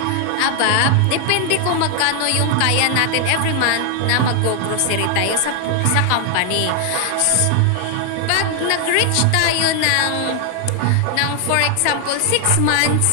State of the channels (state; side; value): different; both; correlation 0.00